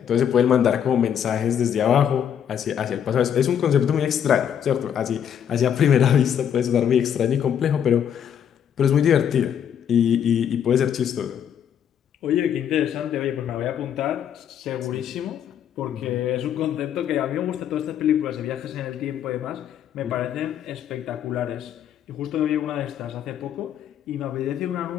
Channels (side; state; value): right; quieter; 9.0 dB